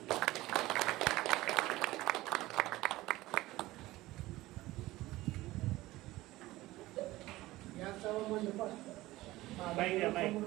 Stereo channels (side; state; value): left; quieter; 17.9 dB